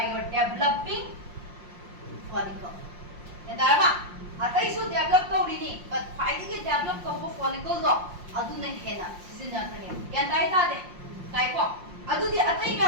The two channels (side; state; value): left; late; 5.6 ms